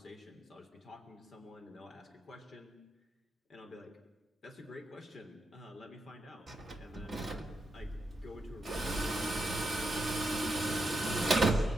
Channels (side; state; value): both; normal; correlation 0.85